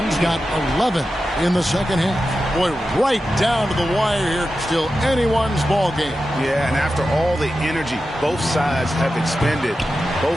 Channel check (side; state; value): both; normal; correlation 0.92